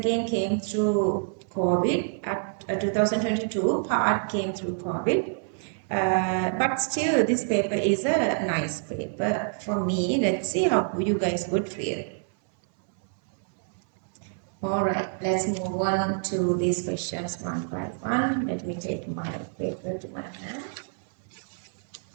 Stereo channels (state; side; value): silent; left; 60 dB below the other